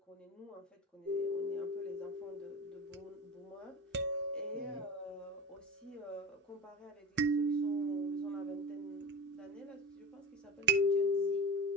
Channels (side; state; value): both; normal; correlation 0.28